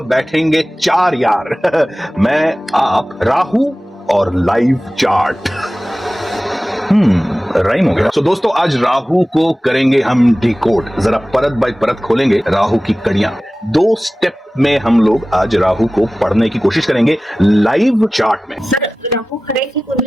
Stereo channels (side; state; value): both; normal; correlation 0.96